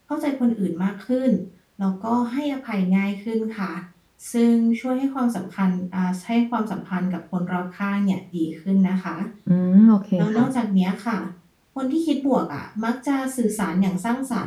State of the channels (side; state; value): both; identical; correlation 1.00